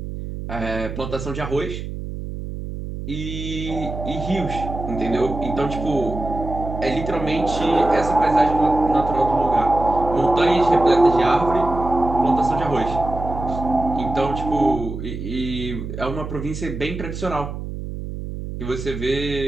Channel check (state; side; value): noise; right; hum, 7 dB below the sound